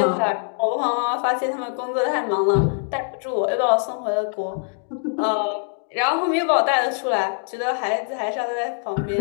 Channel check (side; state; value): right; silent; digital silence